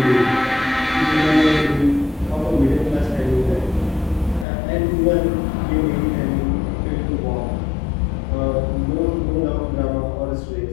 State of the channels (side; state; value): right; drops out; at 4.5 s